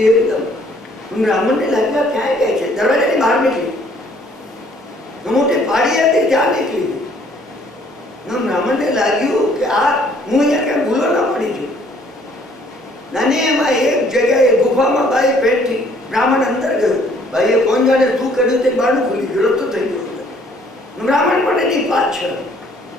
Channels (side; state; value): both; normal; correlation 0.61